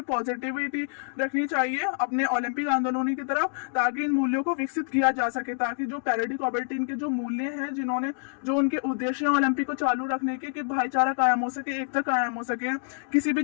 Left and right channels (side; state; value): right; silent; digital silence